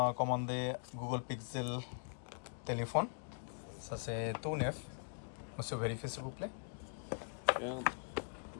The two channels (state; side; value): silent; right; digital silence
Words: comandé Google Pixel téléphone. Ça c'est tout neuf. Monsieur, vérifiez s'il vous plaît. Regarde.